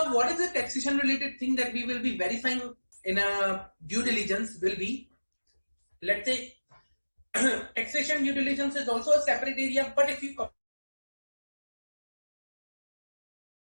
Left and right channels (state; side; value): inverted; both; correlation -1.00